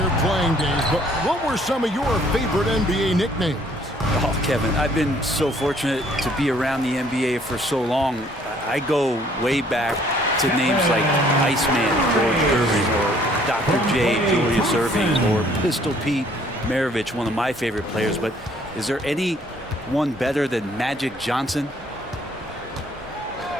playing days, but what were some of your favorite NBA nicknames? Oh, Kevin, I've been so fortunate to be around the NBA for so long. I go way back to names like Iceman, George Irving, or Dr. J, Julius Erving, or Pistol Pete Maravich, one of my favorite players. But is there anyone better than Magic Johnson?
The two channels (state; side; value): normal; both; correlation 0.61